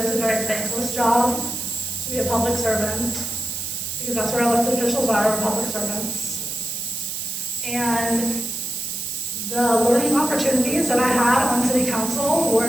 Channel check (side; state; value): right; noise; hiss, 4 dB below the sound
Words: it's a very thankless job to be a public servant, because that's where elected officials are public servants. And the learning opportunities that I had on city council